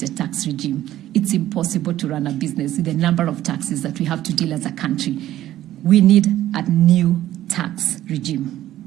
tax regime. It's impossible to run a business with the number of taxes that we have to deal as a country. We need a new tax regime.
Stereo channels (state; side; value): quieter; left; 13.5 dB